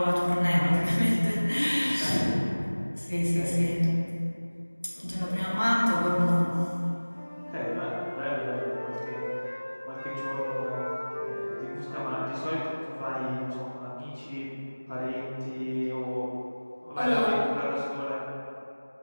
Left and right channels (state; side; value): inverted; both; correlation -1.00